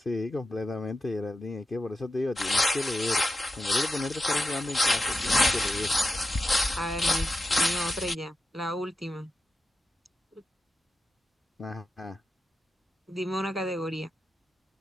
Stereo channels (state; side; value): normal; both; correlation 0.91